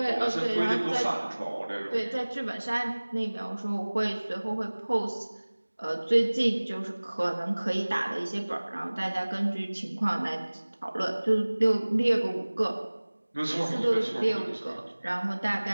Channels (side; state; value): both; inverted; correlation -1.00